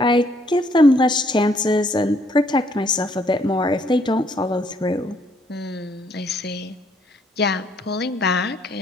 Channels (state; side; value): normal; both; correlation 0.67